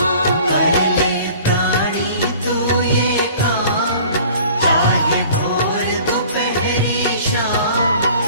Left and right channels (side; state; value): both; inverted; correlation -0.48